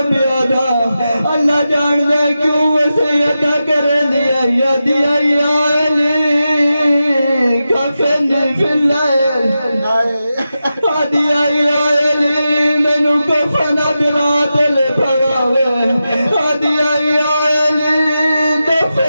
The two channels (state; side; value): inverted; both; correlation -0.91